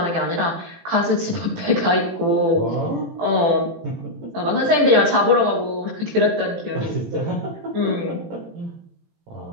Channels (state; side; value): late; left; 18 ms